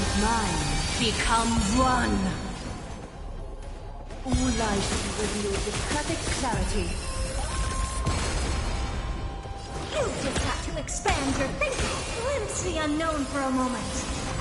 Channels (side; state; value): both; identical; correlation 1.00